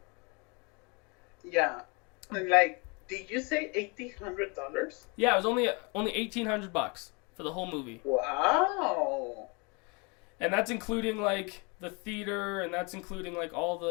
Yeah, did you say $1,800? Yeah, it was only $1,800 for the whole movie. Wow. And that's including the theater, and that's including all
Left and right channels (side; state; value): right; quieter; 31.1 dB